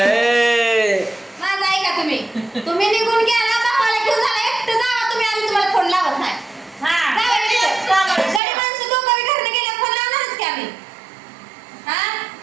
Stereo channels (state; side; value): drops out; left; at 8.4 s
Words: माझं ऐका तुम्ही निघून गेला भावाला घेऊन झाला एकटं जावा तुम्ही आम्ही तुम्हाला फोन लावत नाही गडी माणसं दोघं घरनं गेल्या फोन लावणारच की आम्ही हा